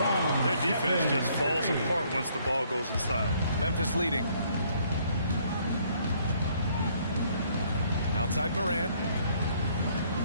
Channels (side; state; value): both; inverted; correlation -0.65